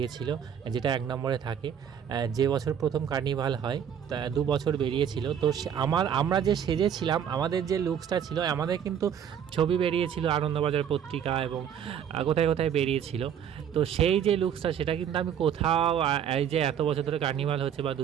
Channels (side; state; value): left; quieter; 8.7 dB